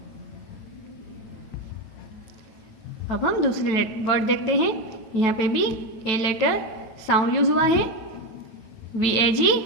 अब हम दूसरे वर्ड देखते हैं। यहाँ पे भी ए लेटर साउंड यूज हुआ है, VAG,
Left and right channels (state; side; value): late; right; 9.1 ms